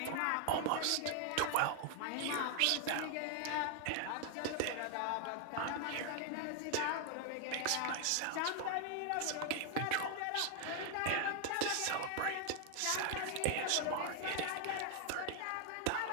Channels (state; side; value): different; both; correlation 0.00